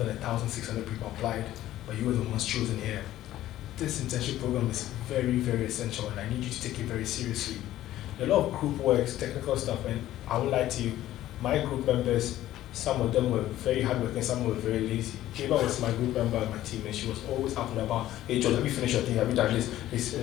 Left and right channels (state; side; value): quieter; right; 13.9 dB